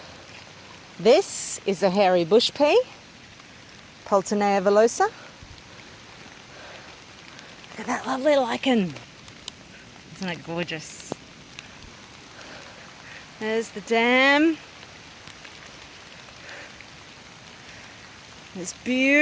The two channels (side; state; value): both; identical; correlation 1.00